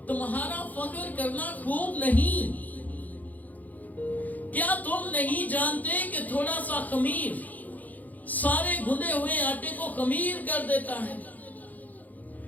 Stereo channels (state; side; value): late; right; 0.080 ms